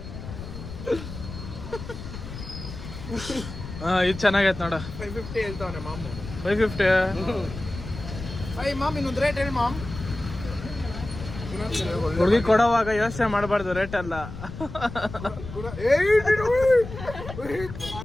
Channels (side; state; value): left; noise; rumble, 11 dB below the sound